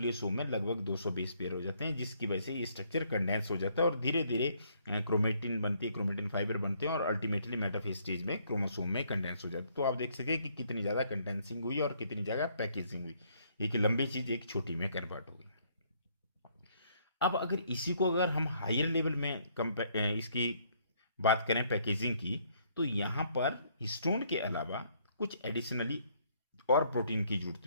में लगभग 220 पेयर हो जाते हैं, जिसकी वजह से ये स्ट्रक्चर कंडेंस हो जाता है और धीरे धीरे क्रोमेटिन बनती है, क्रोमेटिन फाइबर बनते हैं और अल्टीमेटली मेटाफेज स्टेज में क्रोमोसोम में कंडेंस हो जाता है। तो आप देख सके कि कितनी ज़्यादा कंडेंसिंग हुई और कितनी जगह पैकेजिंग हुई, एक लंबी चीज़ एक छोटी में कन्वर्ट हो गई। अब अगर इसी को अगर हम हायर लेवल में इसकी बात करें पैकेजिंग की, तो यहाँ पर हिस्टोन के अलावा कुछ एडिशनली और प्रोटीन की जरूरत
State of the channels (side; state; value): both; inverted; correlation -0.67